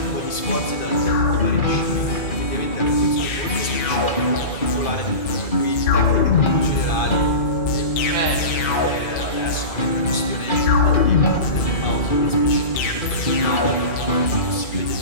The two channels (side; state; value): right; late; 2.5 ms